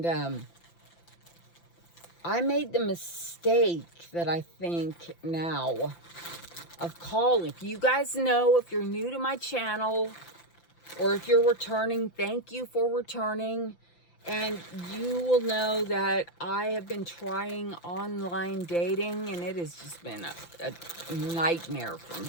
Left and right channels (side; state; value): right; late; 5.9 ms